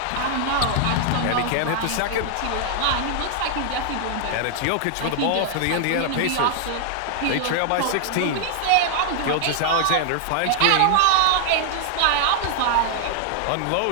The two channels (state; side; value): different; both; correlation 0.00